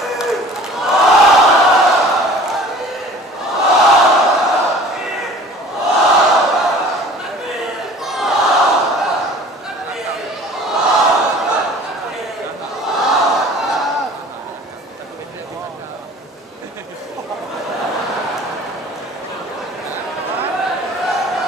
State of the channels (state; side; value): normal; both; correlation 0.47